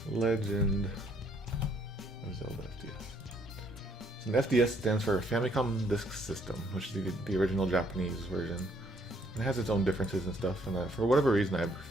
Legend of Zelda FDS. So an FDS stands for Famicom Disk System, which is the original Japanese version. It has its own differences and stuff, and for whatever reason I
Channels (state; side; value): normal; both; correlation 0.67